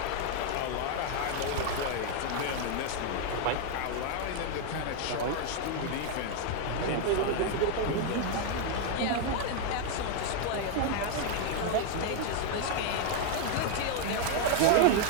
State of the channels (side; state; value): both; different; correlation 0.00